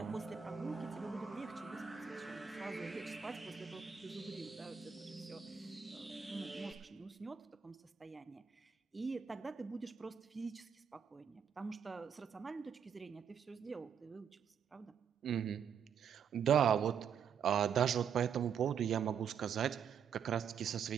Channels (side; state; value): left; quieter; 7.4 dB